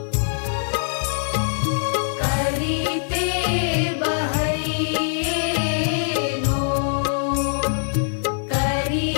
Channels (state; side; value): silent; right; 60 dB below the other